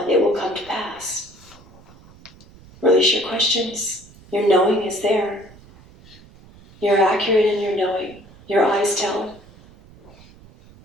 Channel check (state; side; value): noise; right; rumble, 24 dB below the sound